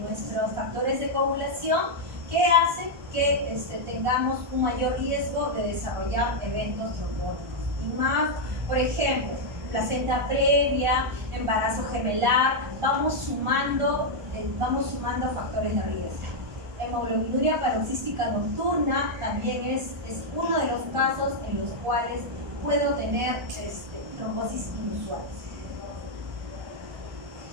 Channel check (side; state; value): left; late; 1.5 ms